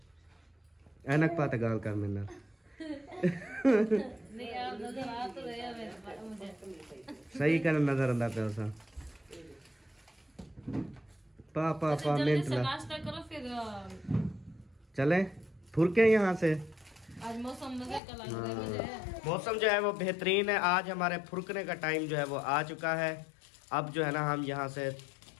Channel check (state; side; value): drops out; right; at 18.0 s